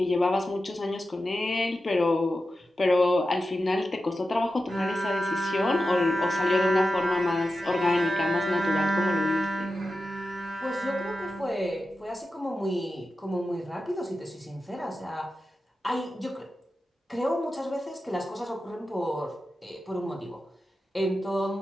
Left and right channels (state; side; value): normal; both; correlation 0.92